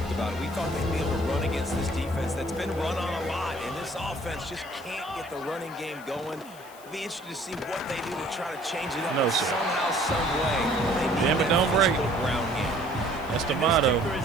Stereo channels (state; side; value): noise; left; hiss, 21 dB below the sound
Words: about it. We thought they'd be able to run against this defense that's been run on a lot, and this offense just can't get the running game going. Be interested to see what they do to try to change it up somehow, some way. Damn it, don't break. Ground game. That's the motto. This kicker